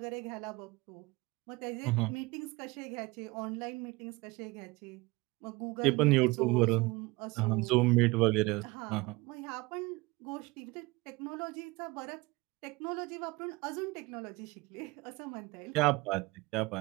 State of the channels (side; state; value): left; quieter; 23.1 dB